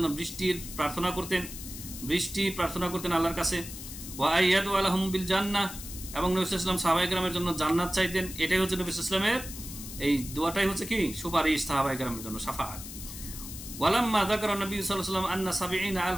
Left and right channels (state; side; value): noise; left; hiss, 11 dB below the sound